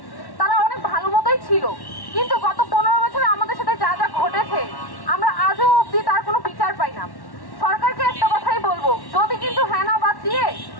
তারা অনেক ভালো মতোই ছিল, কিন্তু গত 15 বছরে আমাদের সাথে যা যা ঘটেছে আমরা আজও অবধি তার কোনো বিচার পাই না। সরকারকে একটা কথাই বলবো, যদি কিন্তু হ্যাঁ না বাদ দিয়ে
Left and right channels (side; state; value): right; late; 1.1 ms